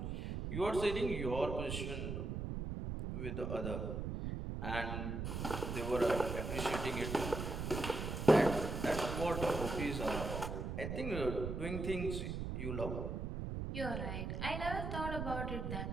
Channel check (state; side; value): noise; right; rumble, 3 dB below the sound